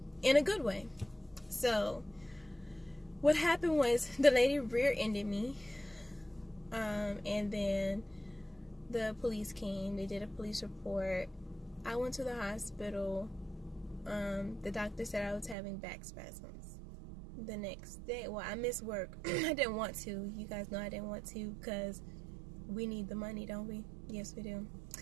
in a good way. So what happened was the lady rear-ended me, and then the police came. They did a police report. I went to the hospital. The doctor said I was having back spasms. The next day, well, I missed work. I didn't want to. You guys know I didn't want to because we need the money, don't we? Yes, we do.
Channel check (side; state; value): left; drops out; at 15.6 s